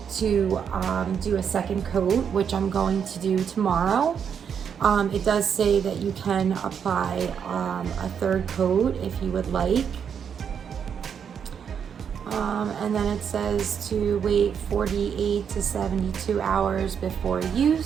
to do a second coat, which I'm going to do tomorrow. It does say that you can apply a third coat if you would like. And then it says to wait 48 to 72 hours before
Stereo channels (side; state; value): left; quieter; 7.5 dB